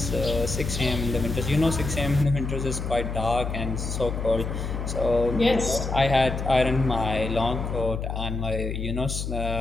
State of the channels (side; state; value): left; noise; hum, 4 dB below the sound